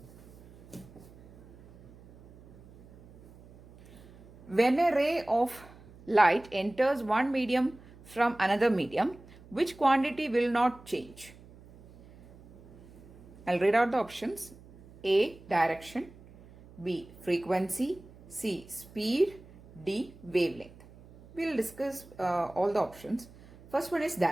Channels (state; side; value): noise; right; hum, 22 dB below the sound